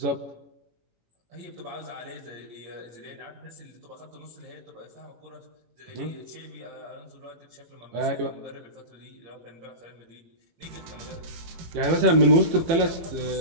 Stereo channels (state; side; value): late; left; 18 ms